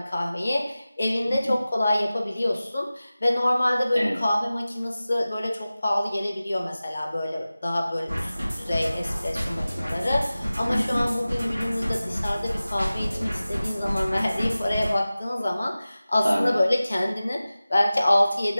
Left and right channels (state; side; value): inverted; both; correlation -0.96